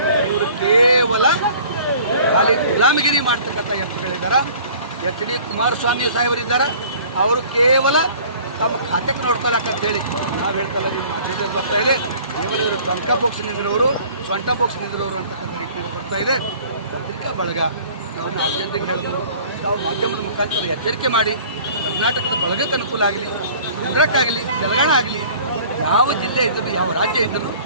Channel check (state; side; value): inverted; both; correlation -0.49